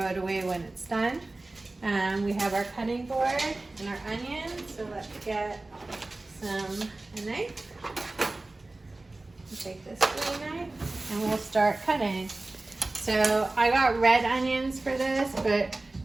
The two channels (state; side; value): quieter; left; 3.0 dB